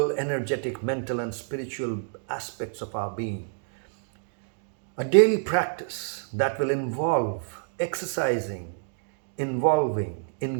energetic, mental, and spiritual aspects of our being. A daily practice that will involve exercising, involving,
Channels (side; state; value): left; silent; digital silence